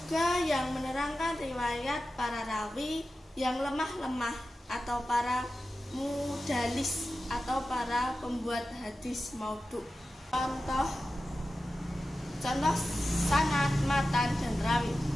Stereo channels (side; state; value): both; normal; correlation 0.93